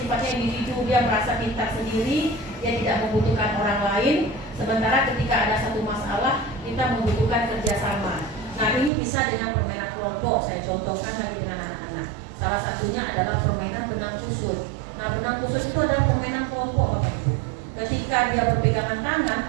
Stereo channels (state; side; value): drops out; left; at 8.9 s